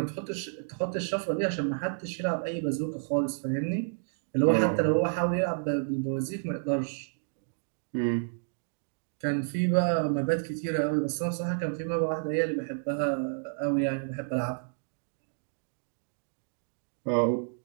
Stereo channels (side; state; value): left; silent; digital silence